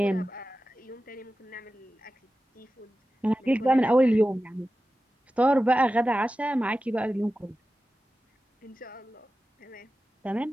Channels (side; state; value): both; normal; correlation 0.94